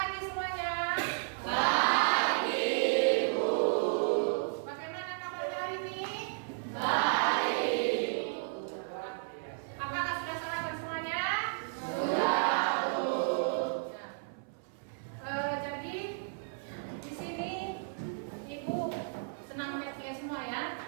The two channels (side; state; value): left; silent; 56 dB below the other